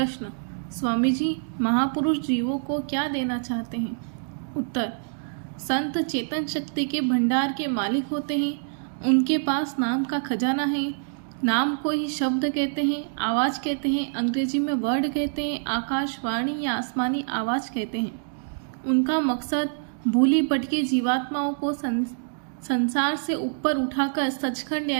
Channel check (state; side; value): silent; left; digital silence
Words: स्वामी जी महापुरुष जीवों को क्या देना चाहते हैं? उत्तर, संत चेतन शक्ति के भंडार के मालिक होते हैं। उनके पास नाम का खजाना है। नाम को ही शब्द कहते हैं, आवाज़ कहते हैं, अंग्रेजी में वर्ड कहते हैं, आकाशवाणी या आसमानी आवाज़ कहते हैं। उनका मकसद भूली भटकी जीवात्माओं को संसार से ऊपर उठाकर सचखंड